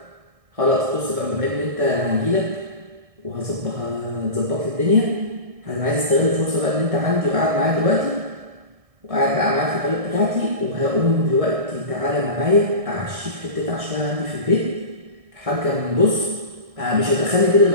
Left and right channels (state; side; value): late; left; 1.6 ms